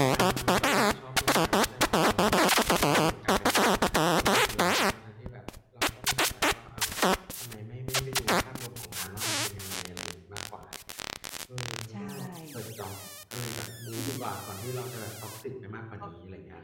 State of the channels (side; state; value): both; identical; correlation 1.00